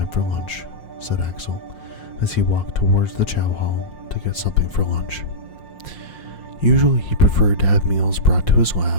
for lunch, said Axel as he walked towards the chow hall to get something for lunch. Usually he preferred to have meals brought to his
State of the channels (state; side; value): late; right; 5.7 ms